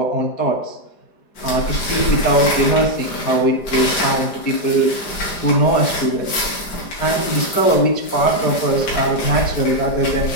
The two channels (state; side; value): late; right; 4.9 ms